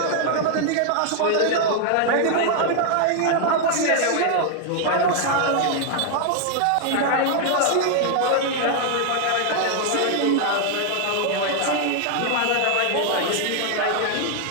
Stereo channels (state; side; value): different; both; correlation 0.00